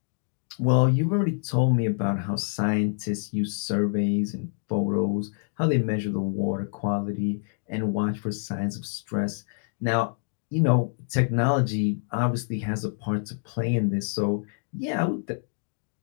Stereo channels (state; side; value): silent; right; 60 dB below the other